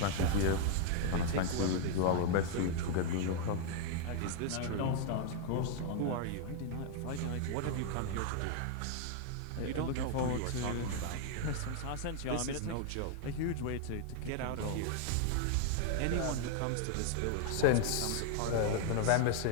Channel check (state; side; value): different; both; correlation 0.00